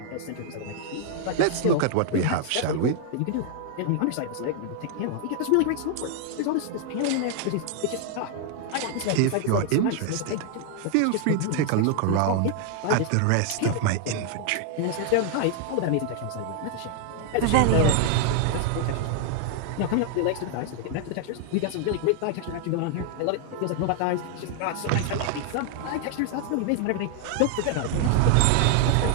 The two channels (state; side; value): different; both; correlation 0.00